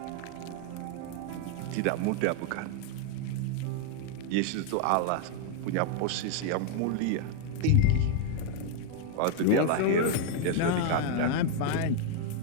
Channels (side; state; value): both; different; correlation 0.00